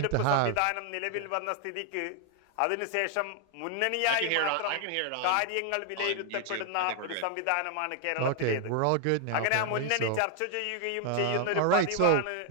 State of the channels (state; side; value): different; both; correlation 0.00